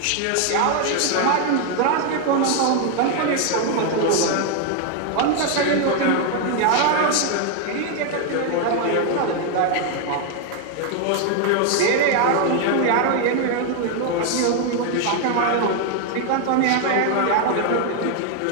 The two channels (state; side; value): different; both; correlation 0.00